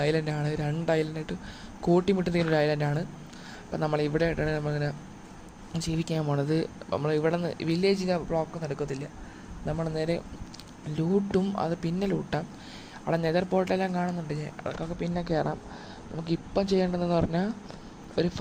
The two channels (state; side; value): identical; both; correlation 1.00